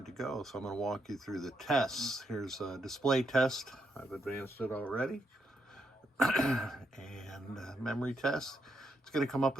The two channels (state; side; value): normal; both; correlation 0.79